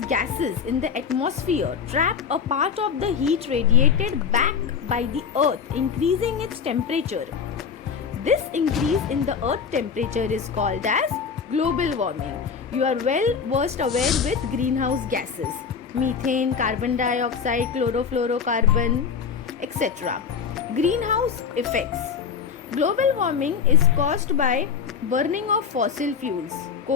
gases in the atmosphere trap a part of the heat radiated back by the earth, increasing its temperature. This increase in the earth temperature is called as global warming. You are well versed aware with greenhouse gases: methane, carbon dioxide, chlorofluorocarbon, etc. Greenhouse effects. Global warming is caused by burning of fossil fuels,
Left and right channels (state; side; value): quieter; right; 6.5 dB